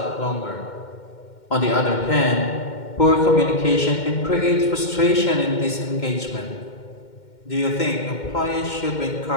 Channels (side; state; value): right; late; 2.1 ms